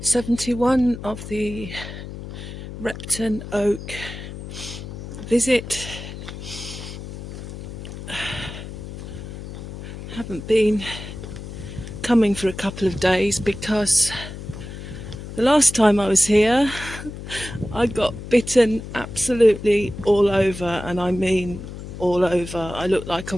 71 of the Repton Oak visit. Haven't been coming for a couple of days because the last time I was here I got bitten absolutely all over, and I mean all over. I look like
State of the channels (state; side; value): noise; left; hum, 10 dB below the sound